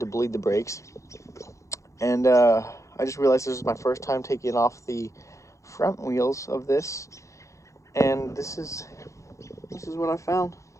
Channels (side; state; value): right; late; 0.15 ms